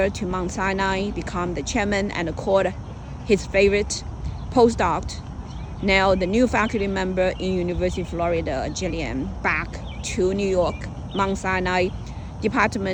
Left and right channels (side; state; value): both; identical; correlation 1.00